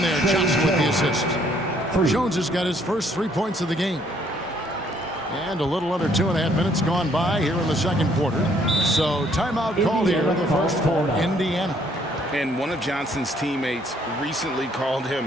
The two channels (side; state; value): both; normal; correlation 0.66